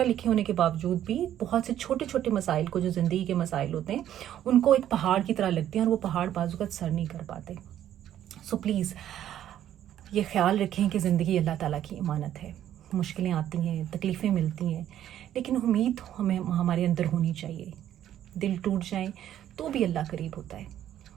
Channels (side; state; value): left; quieter; 11.3 dB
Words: لکھے ہونے کے باوجود بھی بہت سے چھوٹے چھوٹے مسائل کو, جو زندگی کے مسائل ہوتے ہیں, ان کو ایک پہاڑ کی طرح لگتے ہیں اور وہ پہاڑ بعض اوقات سر نہیں کر پاتے. سو پلیز یہ خیال رکھیں کہ زندگی اللہ تعالیٰ کی امانت ہے. مشکلیں آتی ہیں, تکلیفیں ملتی ہیں, لیکن امید ہمیں ہمارے اندر ہونی چاہیے. دل ٹوٹ جائیں تو بھی اللہ قریب ہوتا ہے.